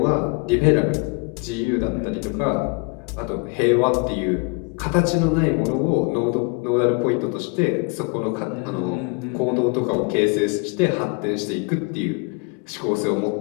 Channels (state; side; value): quieter; right; 31.1 dB